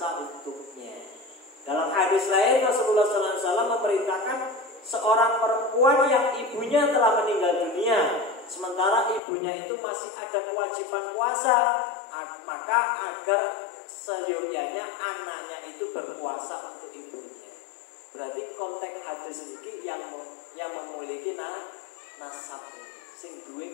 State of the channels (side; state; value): right; drops out; at 9.2 s